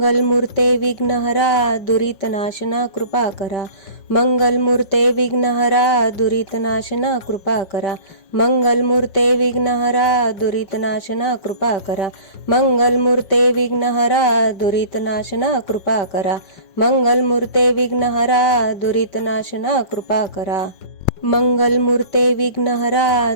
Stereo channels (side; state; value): right; late; 5.1 ms